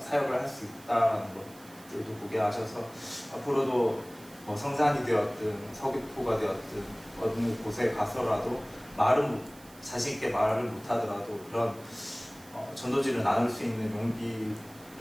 할 수 있다는 것들도 보게 하셔서 앞으로도 뭐 성산이 되었든 서귀포가 되었든 어느 곳에 가서라도 자신 있게 말을 못하더라도 그런 전도지를 나눌 수 있는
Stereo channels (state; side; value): noise; right; hiss, 22 dB below the sound